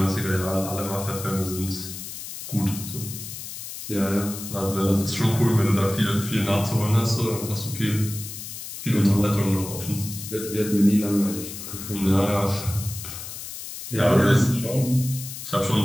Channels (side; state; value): left; noise; hiss, 10 dB below the sound